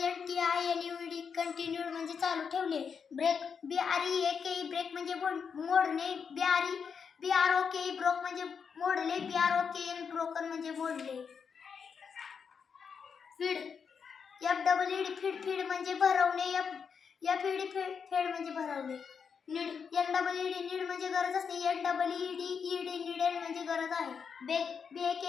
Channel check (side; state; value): right; quieter; 6.3 dB